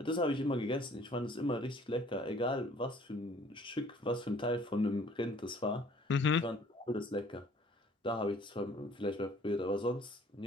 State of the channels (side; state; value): both; normal; correlation 0.55